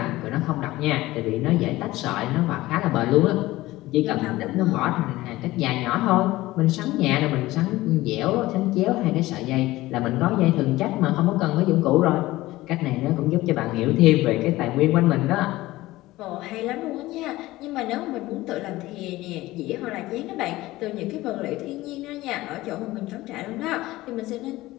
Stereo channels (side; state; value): right; quieter; 17.9 dB